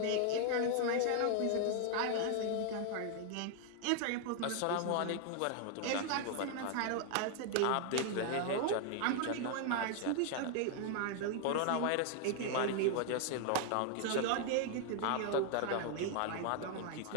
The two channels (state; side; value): different; both; correlation 0.00